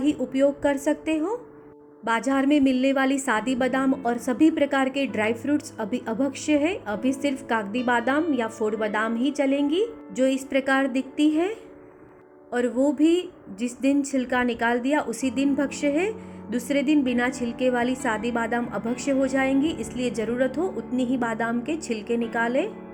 उपयोग कर सकते हो। बाजार में मिलने वाली सादी बादाम और सभी प्रकार के ड्राई फ्रूट्स अभी अभक्ष्य है। अभी सिर्फ कागदी बादाम या फोड़ बादाम ही चलेंगी, जो इस प्रकार दिखती है, और वो भी जिस दिन छिलका निकाल दिया उसी दिन भक्ष्य है। दूसरे दिन बिना छिलके वाली सादी बादाम अभक्ष्य हो जाएंगी, इसलिए ज़रूरत हो उतनी ही बादाम के छिलके निकालें।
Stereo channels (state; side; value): identical; both; correlation 1.00